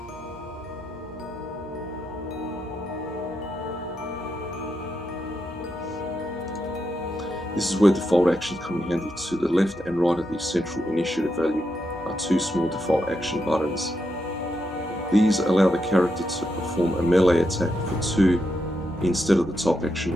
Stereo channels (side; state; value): both; normal; correlation 0.83